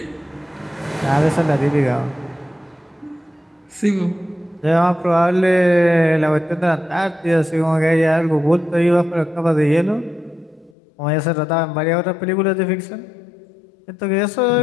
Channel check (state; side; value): drops out; right; at 10.8 s